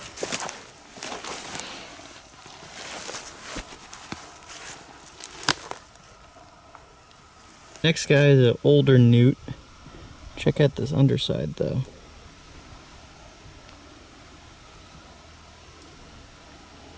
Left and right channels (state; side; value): identical; both; correlation 1.00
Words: Next guy is an older Newt. Check out this underside though.